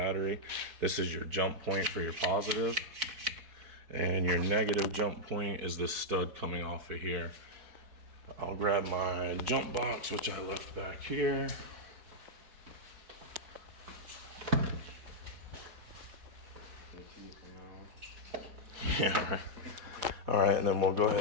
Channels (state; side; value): late; left; 4.6 ms